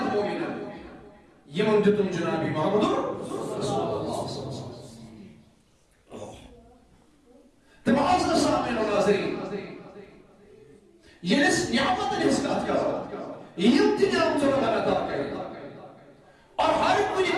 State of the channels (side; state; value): both; identical; correlation 1.00